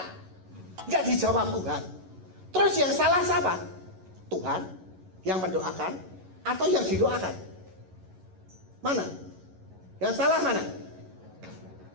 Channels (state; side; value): late; left; 11 ms